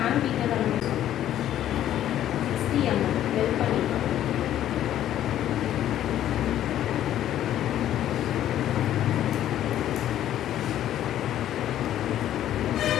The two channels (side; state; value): right; quieter; 11.8 dB